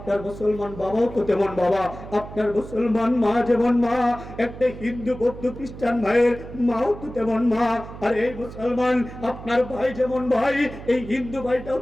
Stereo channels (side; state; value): right; noise; hum, 13 dB below the sound